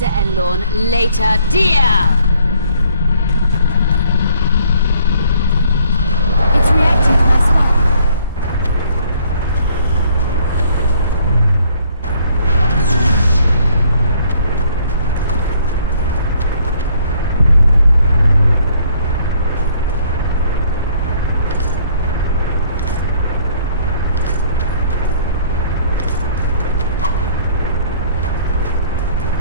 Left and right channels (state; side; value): inverted; both; correlation -0.62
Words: and Lorn. Later, dear! It's reacting to my spell.